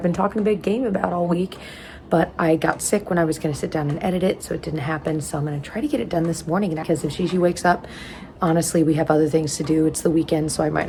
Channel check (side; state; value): both; identical; correlation 1.00